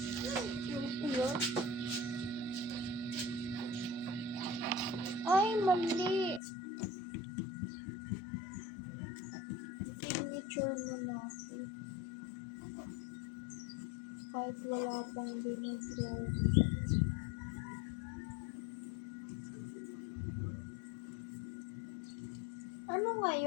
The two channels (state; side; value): drops out; right; at 6.4 s